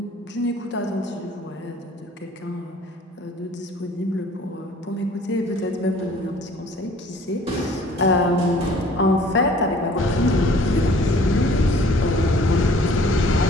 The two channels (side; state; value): both; normal; correlation 0.53